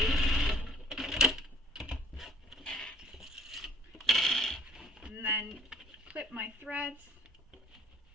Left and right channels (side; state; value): both; normal; correlation 0.58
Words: And then clip my threads.